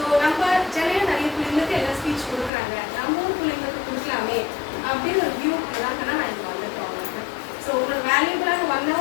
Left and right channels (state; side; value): drops out; right; at 2.5 s